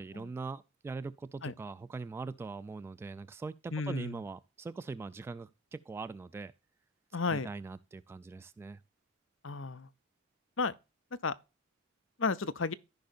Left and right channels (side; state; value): both; normal; correlation 0.21